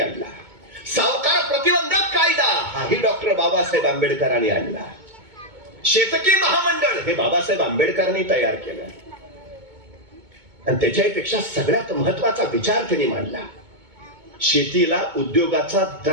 सावकार प्रतिबंधक कायदा हाही डॉक्टर बाबासाहेब आंबेडकरांनी आणला. शेतकी महामंडळ हे बाबासाहेब आंबेडकरांनी तयार केलं. आणि त्याच्यापेक्षा सगळ्यात महत्वाचा विचार त्यांनी मांडला, शेतीला उद्योगाचा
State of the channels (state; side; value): late; left; 2.2 ms